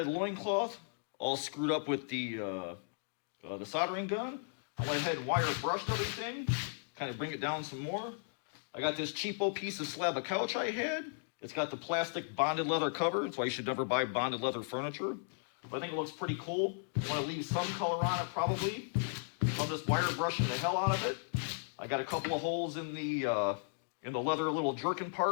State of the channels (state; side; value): silent; right; digital silence